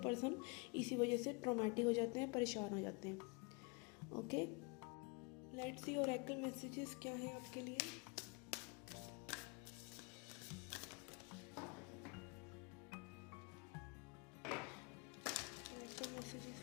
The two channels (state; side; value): quieter; right; 30.6 dB